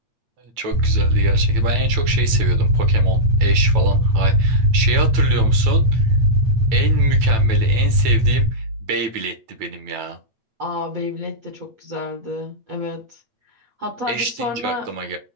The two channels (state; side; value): late; left; 9.0 ms